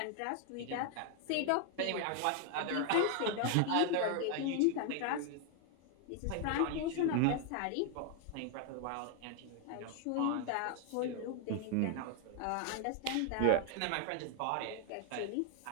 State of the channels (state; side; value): different; both; correlation 0.00